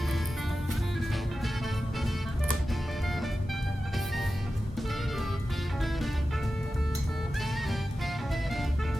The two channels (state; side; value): normal; both; correlation 0.93